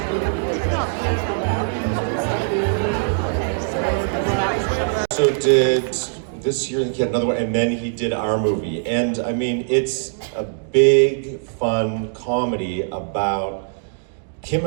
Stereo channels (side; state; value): left; silent; digital silence